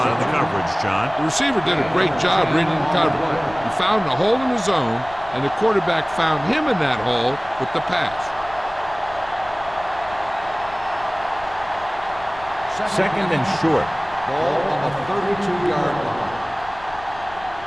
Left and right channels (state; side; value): noise; left; rumble, 19 dB below the sound